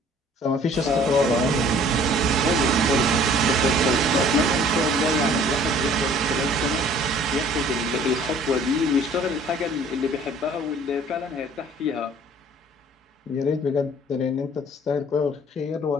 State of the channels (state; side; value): normal; both; correlation 0.53